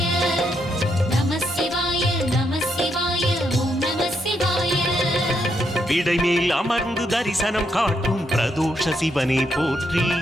நம சிவாய நம சிவாய ஓம் நம சிவாய விடைமேல் அமர்ந்து தரிசனம் காட்டும் பிரதோஷ சிவனே போற்றி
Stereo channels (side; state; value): both; normal; correlation 0.78